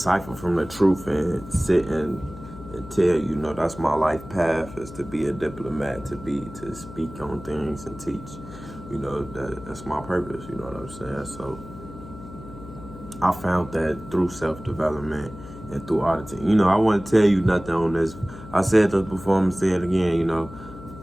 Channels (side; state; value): left; noise; hum, 15 dB below the sound